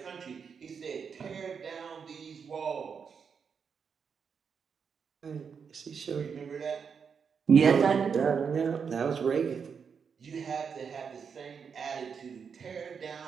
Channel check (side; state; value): left; quieter; 6.4 dB